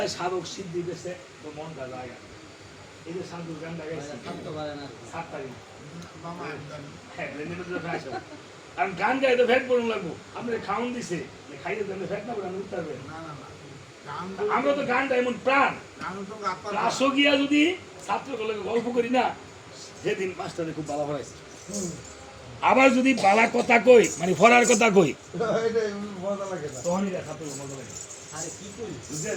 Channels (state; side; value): identical; both; correlation 1.00